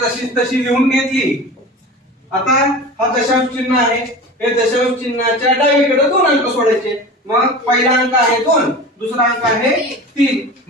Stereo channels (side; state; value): both; normal; correlation 0.34